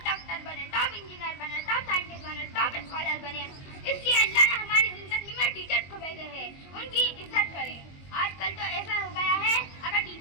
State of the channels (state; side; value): late; right; 22 ms